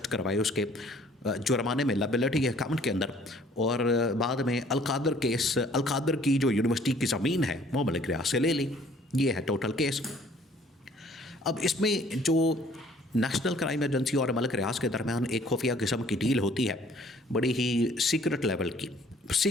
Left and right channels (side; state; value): both; normal; correlation 0.57